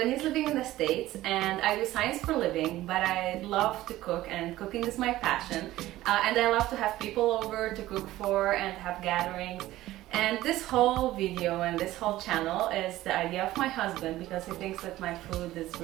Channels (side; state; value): left; quieter; 15.8 dB